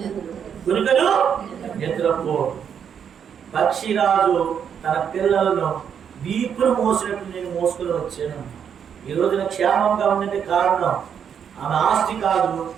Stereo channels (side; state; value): left; quieter; 7.9 dB